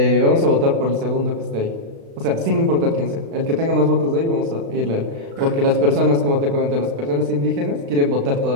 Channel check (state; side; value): late; left; 36 ms